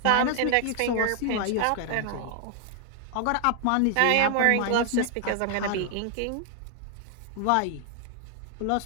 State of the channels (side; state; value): both; different; correlation 0.00